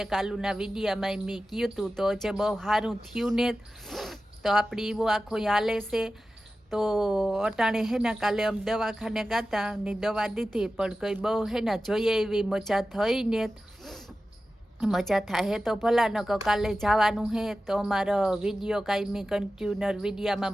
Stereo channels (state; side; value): normal; both; correlation 0.94